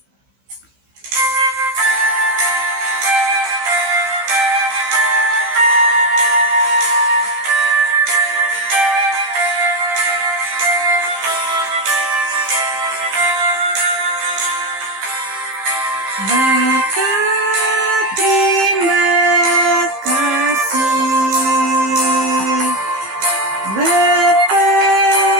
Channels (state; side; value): late; left; 15 ms